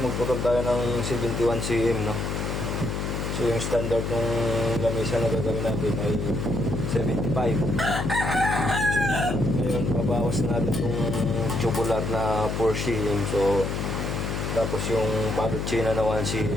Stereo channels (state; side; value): noise; left; hum, 2 dB below the sound